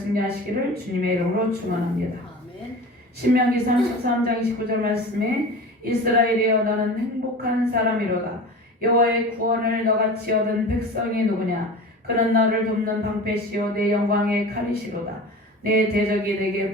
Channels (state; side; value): normal; both; correlation 0.35